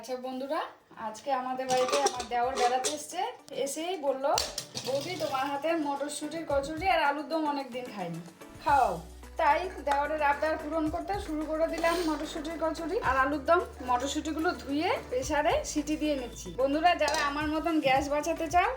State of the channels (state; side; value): identical; both; correlation 1.00